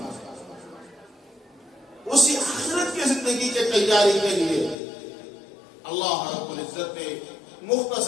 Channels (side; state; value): right; drops out; at 4.8 s